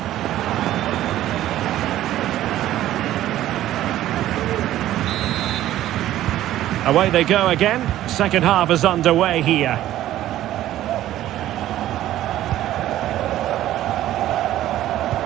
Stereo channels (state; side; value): quieter; left; 13.6 dB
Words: Away they go again. Second half is underway here.